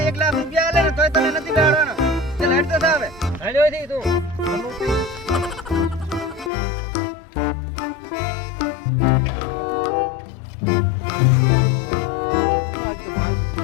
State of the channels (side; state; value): right; drops out; at 6.5 s